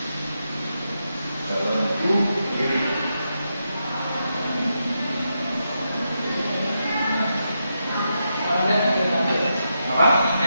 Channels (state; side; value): inverted; both; correlation -0.85